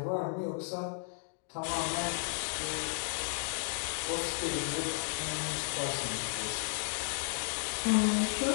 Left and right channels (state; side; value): silent; right; 55 dB below the other